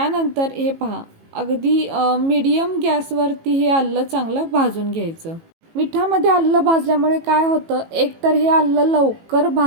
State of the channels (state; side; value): late; left; 18 ms